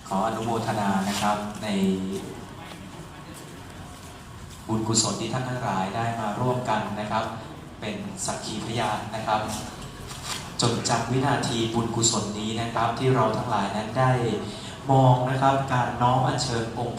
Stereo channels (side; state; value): both; identical; correlation 1.00